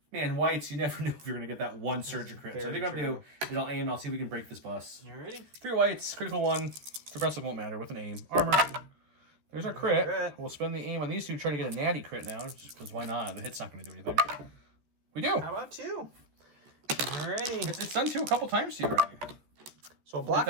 Man, whites, you never knew if you're going to get that 1 surge or crit. So I think what I'm going to do is I'll aim and I'll see if we can break this bus. You ready? 3 whites, critical 1. Suppressive won't matter with an aim. Armor. There's our crit. We'll spend the aim on these 2 to try to get a natty crit now, just because why not? The hit's not going to do anything. We do. How about 2? Alrighty. It's done 2 a couple times to you already. So block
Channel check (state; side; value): late; left; 14 ms